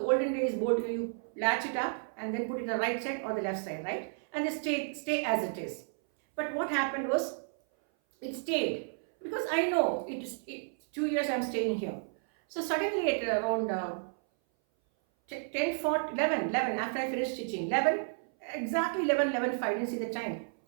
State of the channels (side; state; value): left; silent; 56 dB below the other